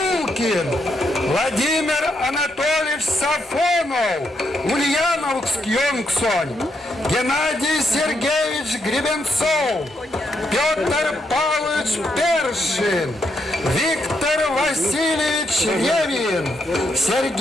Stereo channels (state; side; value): normal; both; correlation 0.79